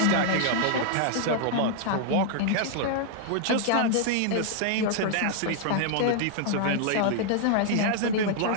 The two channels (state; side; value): different; both; correlation 0.00